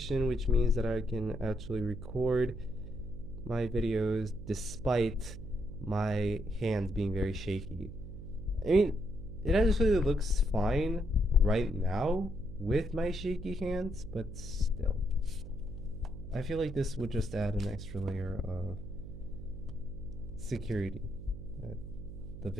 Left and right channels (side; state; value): right; noise; hum, 11 dB below the sound